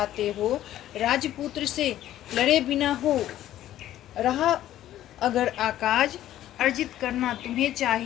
हो। राजपुत्र से लड़े बिना हो रहा अगर आकाज, अर्जित करना तुम्हें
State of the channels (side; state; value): right; quieter; 12.9 dB